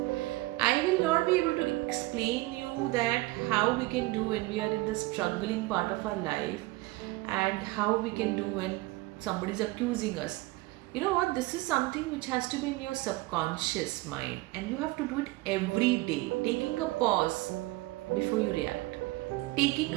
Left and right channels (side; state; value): left; quieter; 20.6 dB